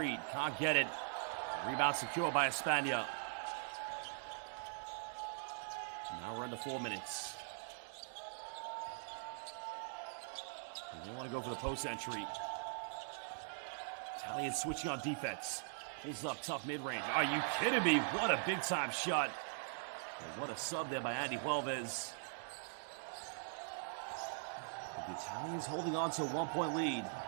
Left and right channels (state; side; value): silent; left; digital silence